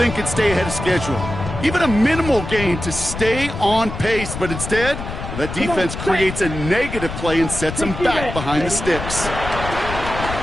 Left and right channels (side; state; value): left; noise; rumble, 7 dB below the sound